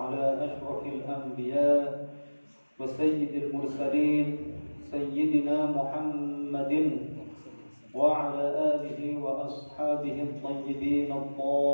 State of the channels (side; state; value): both; inverted; correlation -1.00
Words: ashrafil anbiya wa sayyidil mursalin sayyidina Muhammadin wa ala alihi wa ashabihi at-tayyibin